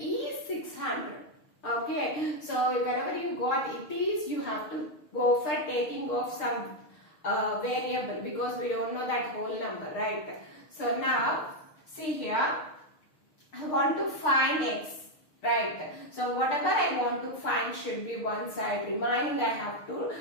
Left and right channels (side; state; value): right; late; 6.4 ms